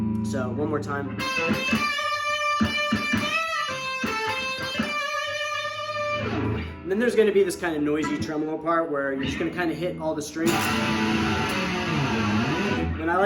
So one more time. And then there's going to be this kind of noisy tremolo part where you're just going to kind of hit all the strings. And I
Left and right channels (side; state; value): both; identical; correlation 1.00